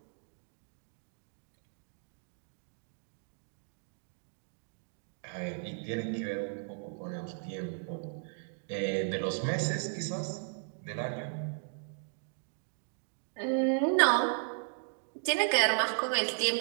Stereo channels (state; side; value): silent; left; digital silence